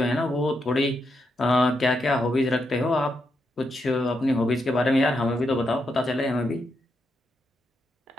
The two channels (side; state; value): both; normal; correlation 0.82